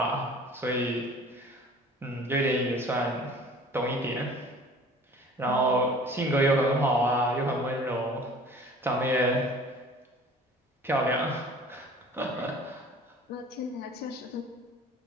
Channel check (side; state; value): both; normal; correlation 0.47